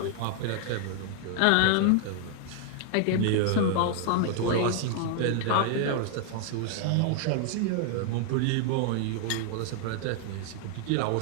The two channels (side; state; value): both; different; correlation 0.00